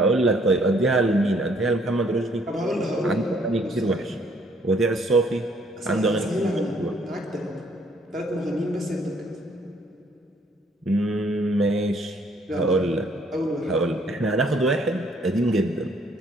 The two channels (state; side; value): normal; both; correlation 0.64